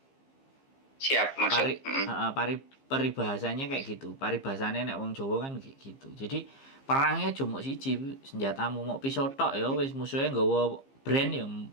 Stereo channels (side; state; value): right; late; 15 ms